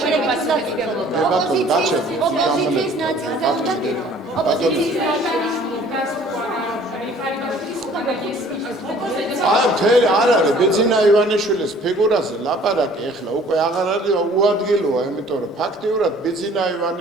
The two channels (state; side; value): normal; both; correlation 0.53